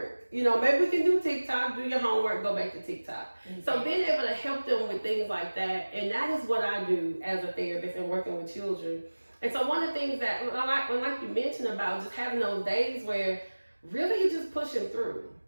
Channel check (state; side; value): inverted; both; correlation -1.00